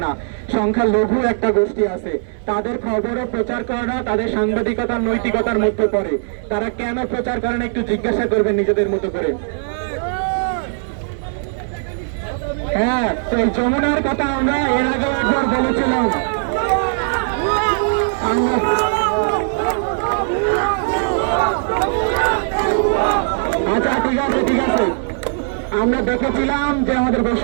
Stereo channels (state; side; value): silent; left; digital silence